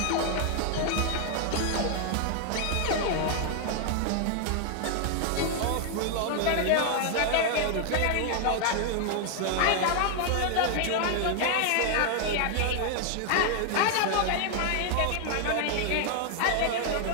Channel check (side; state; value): both; different; correlation 0.00